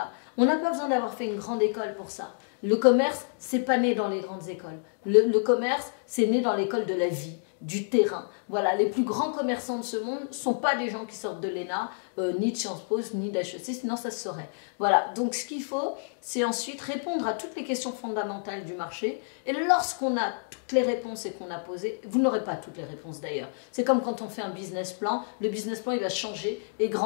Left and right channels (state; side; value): silent; right; digital silence